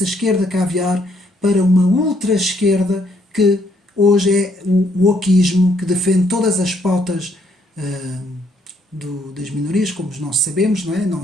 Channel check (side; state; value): both; normal; correlation 0.70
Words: esquerda caviar para uma ultra-esquerda que hoje é o wokismo, que defende todas as pautas das minorias, como nós sabemos, não é? Não